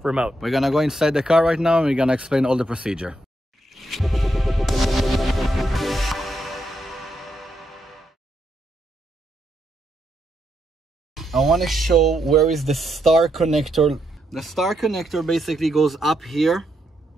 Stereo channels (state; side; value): normal; both; correlation 0.80